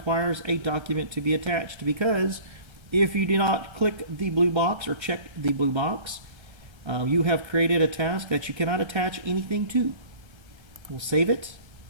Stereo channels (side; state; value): left; late; 1.3 ms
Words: a document to be attached, because if you do not click the blue box or check the blue box, you have created a task that you cannot attach anything to. We'll save it,